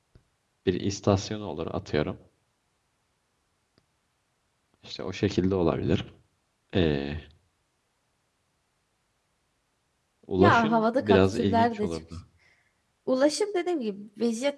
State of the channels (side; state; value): both; identical; correlation 1.00